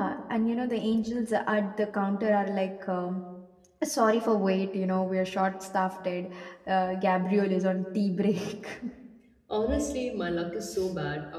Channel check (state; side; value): identical; both; correlation 1.00